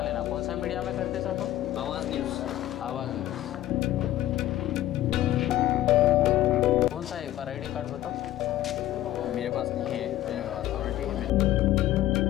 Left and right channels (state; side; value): quieter; right; 13.9 dB